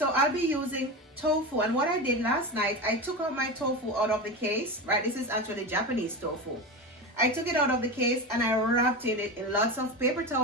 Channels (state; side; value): normal; both; correlation 0.22